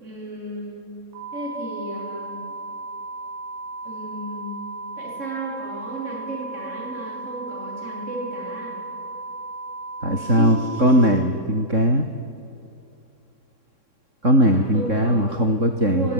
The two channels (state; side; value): late; left; 3.6 ms